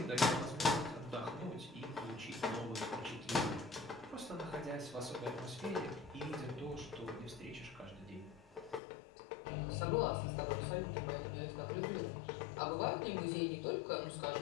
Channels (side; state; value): right; drops out; at 8.8 s